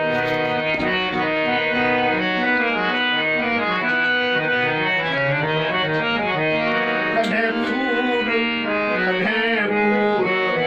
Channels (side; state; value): both; identical; correlation 1.00